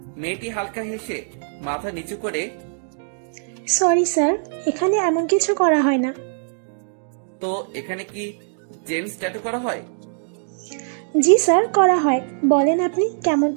মেয়েটি হালকা হেসে মাথা নিচু করে, সরি স্যার, এখানে এমন কিছু করা হয় না। তো এখানে কি জেন্টস ট্যাটু করা হয়? জি স্যার, করা হয়। বলেন আপনি কেমন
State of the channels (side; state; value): left; silent; digital silence